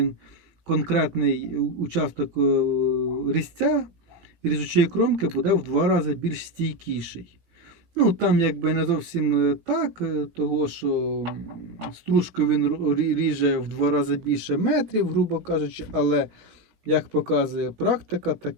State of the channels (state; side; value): late; left; 18 ms